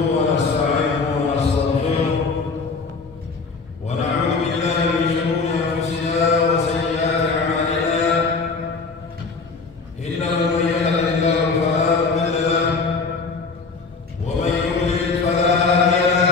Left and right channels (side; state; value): right; quieter; 4.4 dB